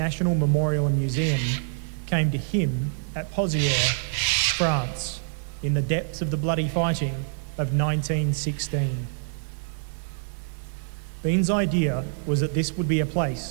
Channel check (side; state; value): left; silent; digital silence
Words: memorial and museum came to him at Pozières, France, in the depths of the bloody fighting of 1916. Bean's idea was that this would be a